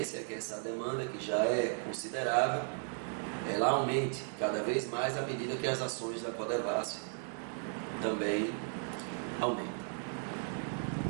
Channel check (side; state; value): left; silent; 54 dB below the other